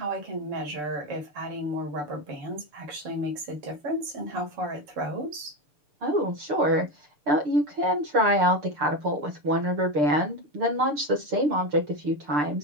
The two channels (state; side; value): late; left; 6.7 ms